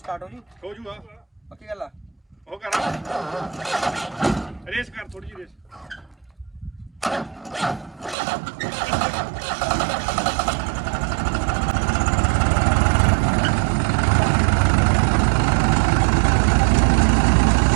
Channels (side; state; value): left; drops out; at 8.2 s